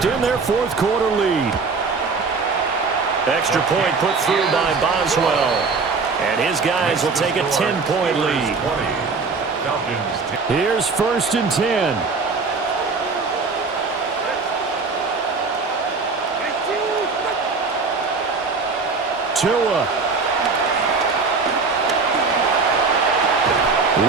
their fourth quarter lead. Extra point put through by Boswell. And his guys will take a 10-point lead. Here's 1st and 10. Tua.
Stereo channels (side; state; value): left; quieter; 4.5 dB